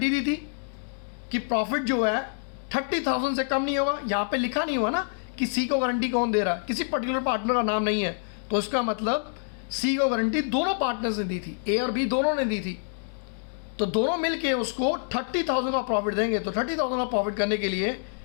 दी थी कि प्रॉफिट जो है 30,000 से कम नहीं होगा। यहाँ पे लिखा नहीं हुआ ना कि सी को गारंटी कौन दे रहा है, किसी पर्टिकुलर पार्टनर का नाम नहीं है, तो इसका मतलब सी को गारंटी दोनों पार्टनर्स ने दी थी, ए और बी दोनों ने दी थी। तो दोनों मिलके उसको 30,000 का प्रॉफिट देंगे। तो 30,000 का प्रॉफिट करने के लिए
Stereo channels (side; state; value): right; silent; digital silence